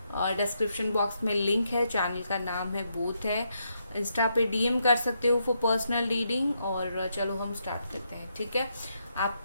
और डिस्क्रिप्शन बॉक्स में लिंक है, चैनल का नाम है बोथ है। इंस्टा पे डीएम कर सकते हो फॉर पर्सनल रीडिंग। और चलो हम स्टार्ट करते हैं, ठीक है।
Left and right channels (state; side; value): inverted; both; correlation -0.79